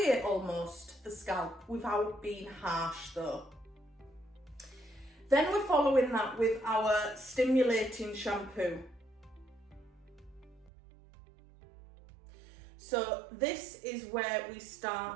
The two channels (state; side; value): drops out; left; at 10.7 s